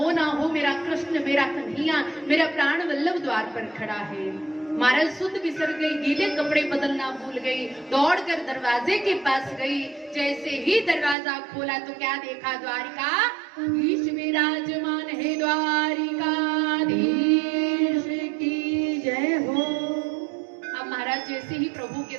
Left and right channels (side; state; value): left; drops out; at 11.2 s